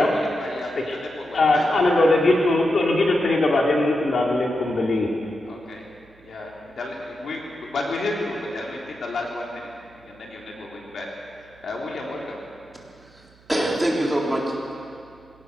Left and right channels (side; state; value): right; noise; hum, 28 dB below the sound